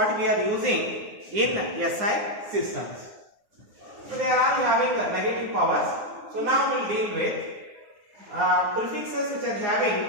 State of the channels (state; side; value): late; left; 9.5 ms